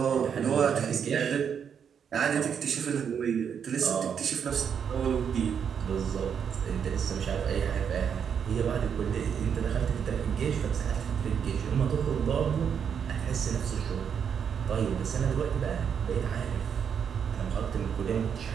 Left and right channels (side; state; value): left; quieter; 7.5 dB